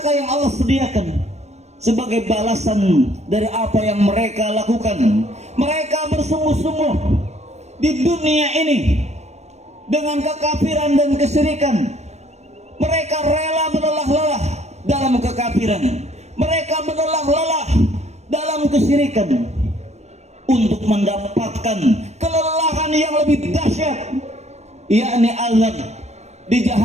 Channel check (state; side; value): late; left; 0.32 ms